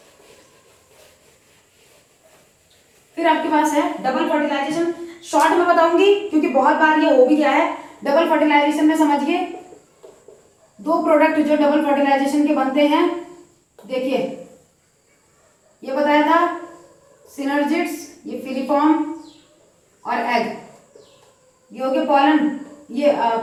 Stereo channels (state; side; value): identical; both; correlation 1.00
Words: फिर आपके पास है डबल फर्टिलाइजेशन, शॉर्ट में बताऊंगी क्योंकि बहुत बार ये हो भी गया है। डबल फर्टिलाइजेशन में समझिए दो प्रोडक्ट जो डबल फर्टिलाइजेशन के बनते हैं, देखिए ये बताया था सिनर्जिड्स, ये फिलीफॉर्म और एग, ये हो गया पॉलन, ये